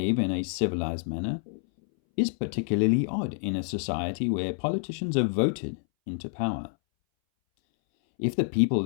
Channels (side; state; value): right; silent; 60 dB below the other